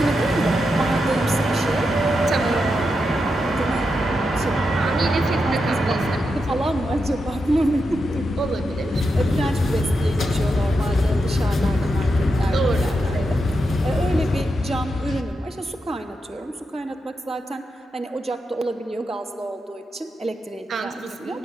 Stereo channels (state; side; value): normal; both; correlation 0.86